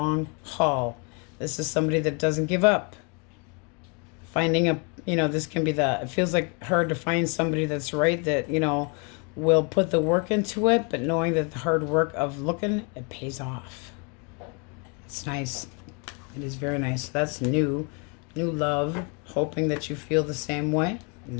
haul. This is somebody that doesn't give up. Finding a, you know, this can be it feels like hard to find somebody that's right, that, you know, will put the work into it, but knowing that the hard work of looking, it pays off. It's nice. It is very nice. That's new love, hoping that you feel the same way.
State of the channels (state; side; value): quieter; right; 34.4 dB